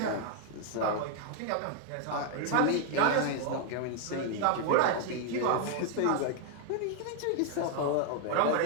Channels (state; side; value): different; both; correlation 0.00